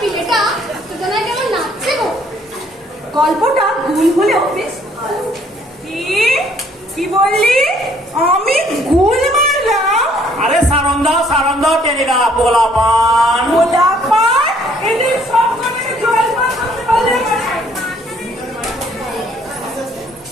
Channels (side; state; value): both; normal; correlation 0.63